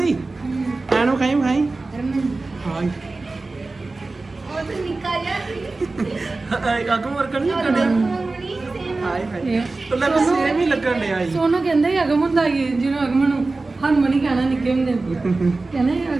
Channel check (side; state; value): left; quieter; 3.5 dB